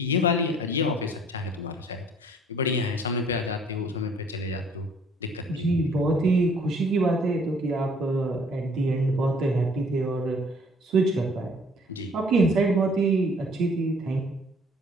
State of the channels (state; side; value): normal; both; correlation 0.58